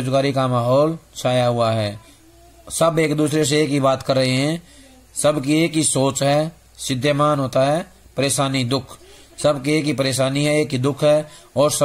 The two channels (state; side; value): identical; both; correlation 1.00